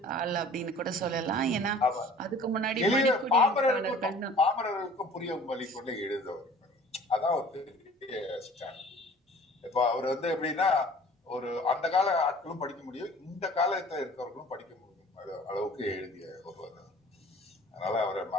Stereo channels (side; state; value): both; normal; correlation 0.48